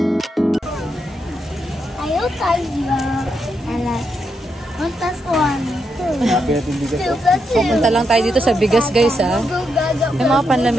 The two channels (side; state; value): both; normal; correlation 0.82